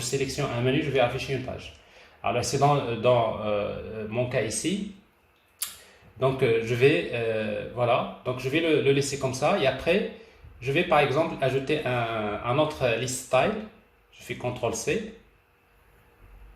un menu, je vais afficher une page. Alors, c'est dans mon cas ici. Donc, je vais, voilà. Donc, je vais le laisser comme ça. Et après, je vais, par exemple, ajouter un autre list style. Je fais CTRL-C.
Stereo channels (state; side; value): identical; both; correlation 1.00